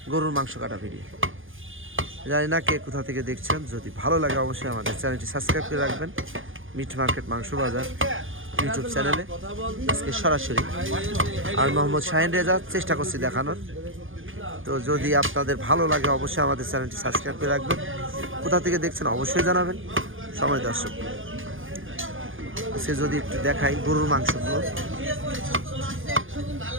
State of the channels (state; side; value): late; left; 0.58 ms